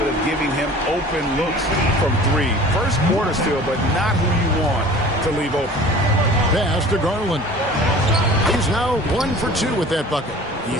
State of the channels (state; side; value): normal; both; correlation 0.44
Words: of giving him open looks from three. First quarter still, but not who you want to leave open. Pass to Garland. He's now 1 for 2 with that bucket. You